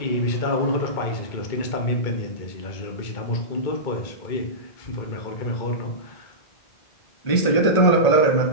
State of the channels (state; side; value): late; right; 1.5 ms